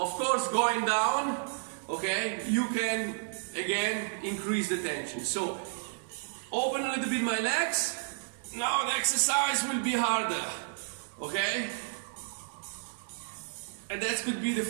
course going down, okay, you can again increase the tension. So open a little bit my legs. Now the exercise will be harder. Okay, and that could be the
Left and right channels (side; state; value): left; silent; digital silence